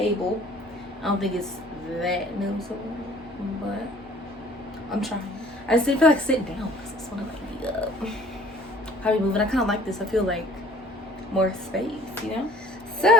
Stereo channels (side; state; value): both; normal; correlation 0.52